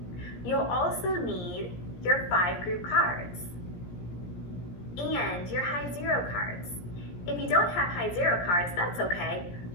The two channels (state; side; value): late; right; 17 ms